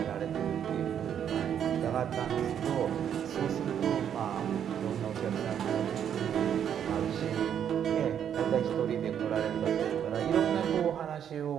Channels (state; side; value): quieter; left; 9.0 dB